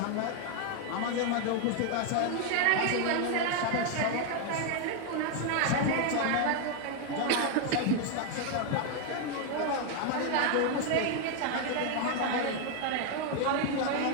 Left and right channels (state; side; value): different; both; correlation 0.01